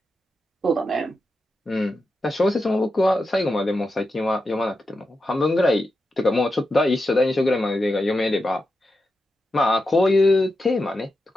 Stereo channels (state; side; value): normal; both; correlation 0.88